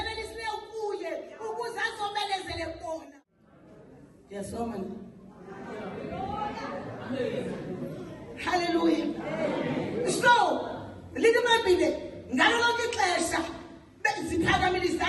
kuye ukuze azomelezele bona yasoma haleluya so lithi iBhayibhile ngalo lonke ixesha ziphakamile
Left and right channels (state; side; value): identical; both; correlation 1.00